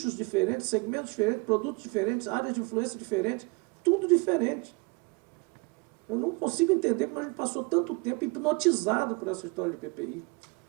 diferentes, segmentos diferentes, produtos diferentes, áreas de influência diferentes, tudo diferente. Eu não consigo entender como a gente passou tanto tempo hipnotizado por essa história de PPI.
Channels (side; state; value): left; quieter; 28.6 dB